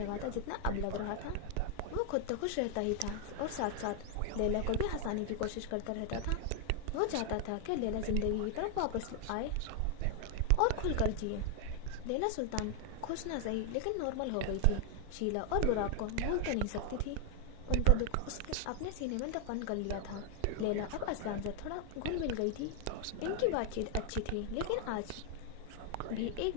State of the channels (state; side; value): different; both; correlation 0.00